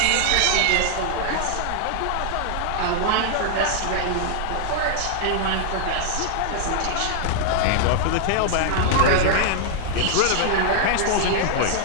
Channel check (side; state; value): both; different; correlation -0.01